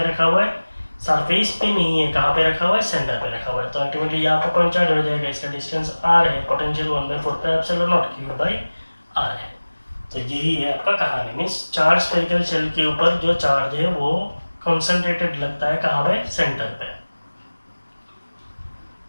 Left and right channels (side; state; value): both; inverted; correlation -1.00